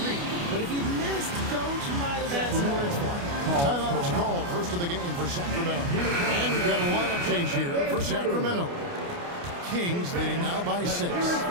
But if he missed, Coach might have had some words for him. Timeout is called. First of the game for Sacramento. And we've got a lineup change here for Sacramento. Kings leading now by 6. And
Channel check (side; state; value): left; late; 29 ms